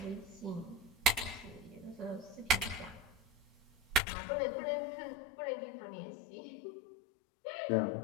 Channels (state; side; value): drops out; right; at 4.0 s